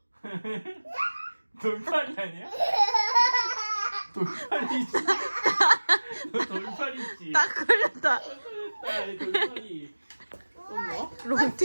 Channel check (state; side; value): inverted; both; correlation -1.00